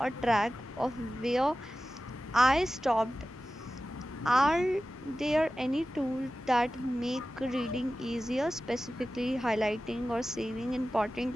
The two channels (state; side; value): normal; both; correlation 0.95